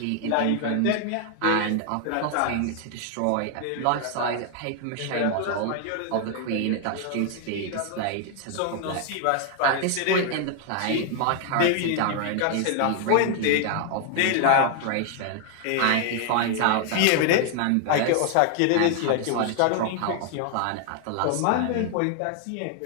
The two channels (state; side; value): different; both; correlation 0.00